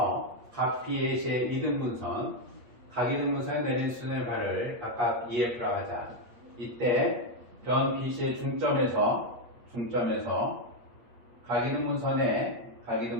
각 BAC의 이등분선, 각 이등분선에 내린 수선의 발을 각각 EF라 하자. 이때 변 BC의 중점에서 각 이등분선에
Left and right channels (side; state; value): left; late; 8.4 ms